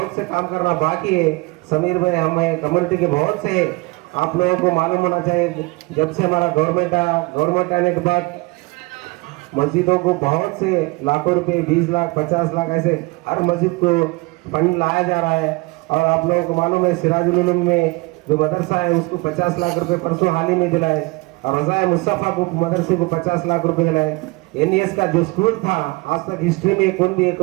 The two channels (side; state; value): left; quieter; 24.9 dB